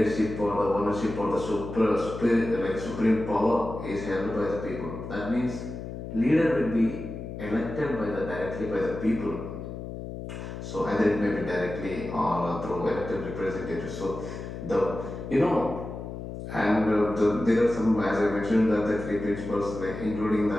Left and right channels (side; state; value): left; noise; hum, 8 dB below the sound